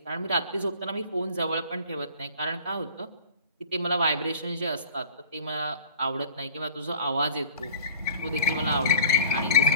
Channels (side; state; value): both; inverted; correlation -0.45